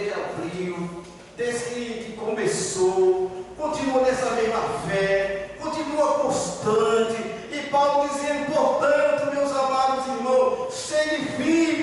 abriu, desde que começou, continua nessa mesma fé, continua constante. E Paulo dizendo: portanto, meus amados irmãos, sede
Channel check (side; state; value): both; identical; correlation 1.00